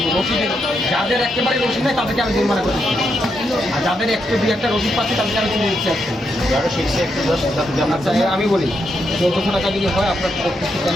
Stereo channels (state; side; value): normal; both; correlation 0.81